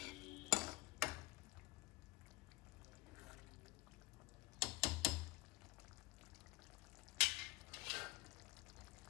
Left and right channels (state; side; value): quieter; right; 21.9 dB